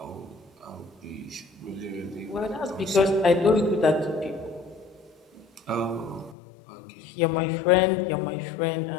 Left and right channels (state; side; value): drops out; right; at 6.4 s